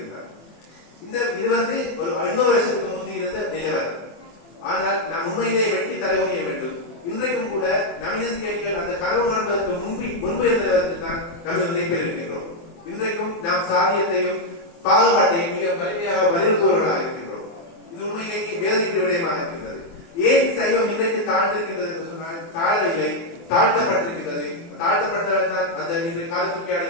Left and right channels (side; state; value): right; late; 24 ms